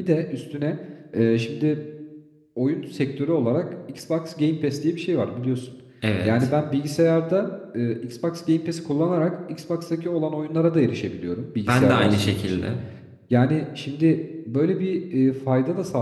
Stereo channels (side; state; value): both; identical; correlation 1.00